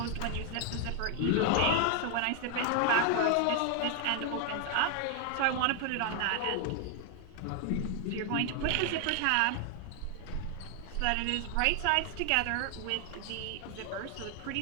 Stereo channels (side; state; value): both; different; correlation 0.00